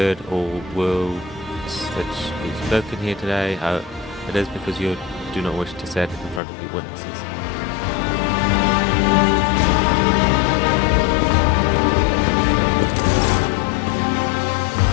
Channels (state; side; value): drops out; right; at 6.4 s